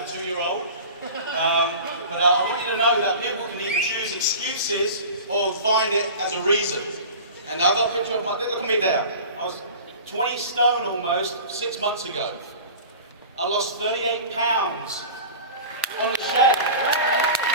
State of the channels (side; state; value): both; inverted; correlation -0.37